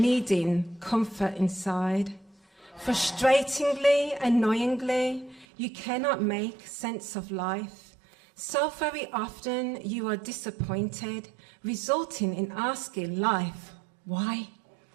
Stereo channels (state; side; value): drops out; left; at 5.5 s